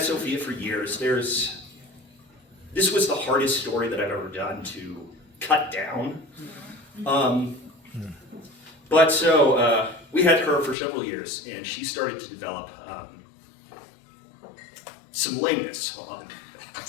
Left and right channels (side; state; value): right; drops out; at 10.8 s